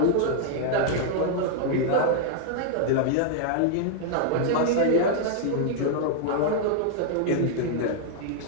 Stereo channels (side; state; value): both; different; correlation -0.01